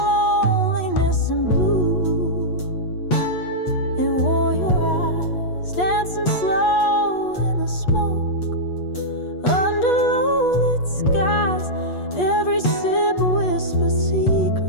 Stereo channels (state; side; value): late; right; 8.3 ms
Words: loneliness and blue, it wore your eyes dancing slow in the smoke under low-lit skies. Every sip whispers